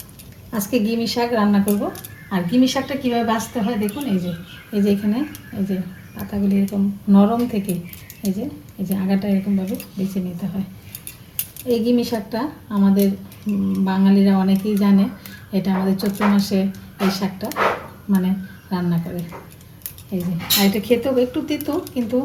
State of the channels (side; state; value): both; identical; correlation 1.00